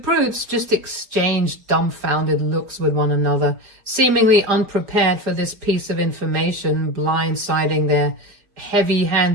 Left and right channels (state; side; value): late; left; 4.9 ms